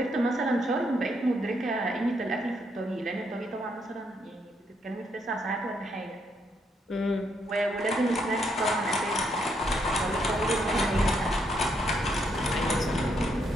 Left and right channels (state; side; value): normal; both; correlation 0.75